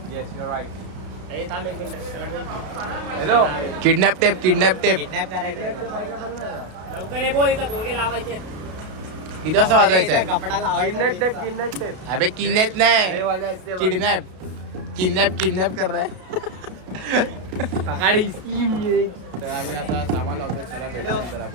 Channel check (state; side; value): late; left; 32 ms